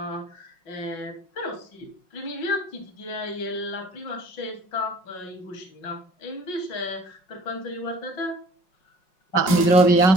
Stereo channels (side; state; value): right; late; 5.5 ms